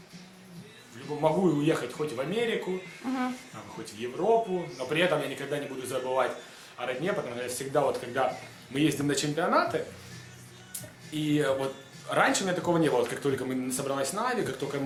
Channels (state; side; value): identical; both; correlation 1.00